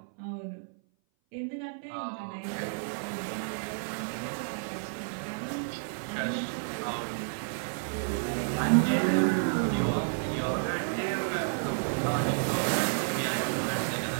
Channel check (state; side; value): silent; left; 56 dB below the other